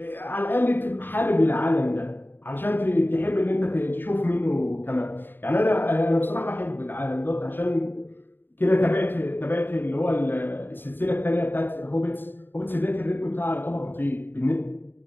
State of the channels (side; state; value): right; late; 0.095 ms